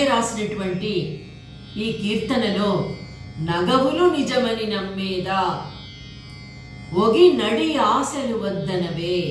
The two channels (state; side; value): identical; both; correlation 1.00